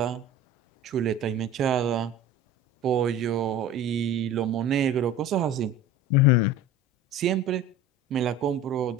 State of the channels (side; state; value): both; normal; correlation 0.37